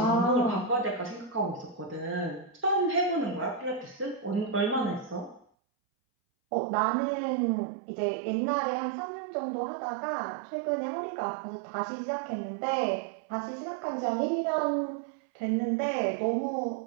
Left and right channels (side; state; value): left; drops out; at 5.5 s